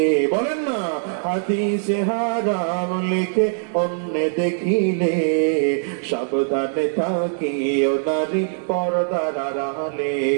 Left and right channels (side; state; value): left; silent; 64 dB below the other